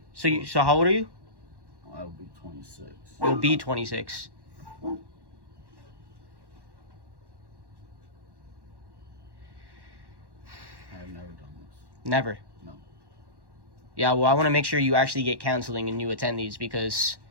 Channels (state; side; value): late; left; 1.1 ms